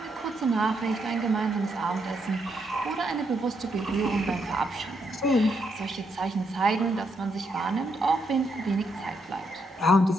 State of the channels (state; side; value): normal; both; correlation 0.77